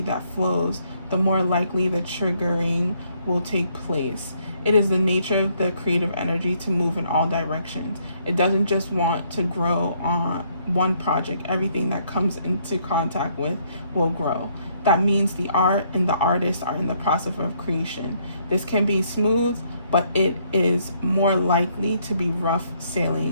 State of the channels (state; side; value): inverted; both; correlation -0.69